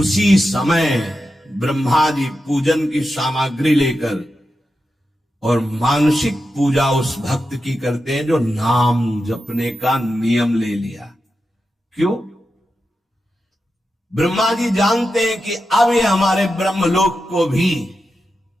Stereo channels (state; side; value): normal; both; correlation 0.89